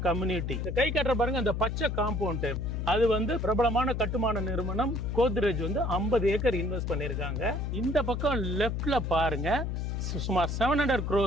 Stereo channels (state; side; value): noise; left; hum, 2 dB below the sound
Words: கம்யூனிட்டி. கை கட்டுற பாருங்க, அந்த பச்சை காம்பவுண்ட், அது வந்து பிரபலமான கட்டுமான நிறுவனம் கோத்ரேஜ் வந்து 50 ஏக்கர் இன்வெஸ்ட் பண்ணிருக்காங்க. இந்த பக்கம் லெஃப்ட்ல பாருங்க, சுமார் 700